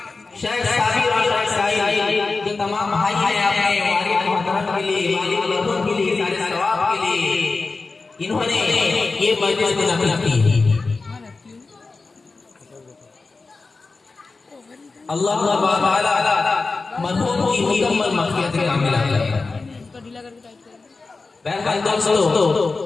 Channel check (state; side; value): quieter; right; 3.9 dB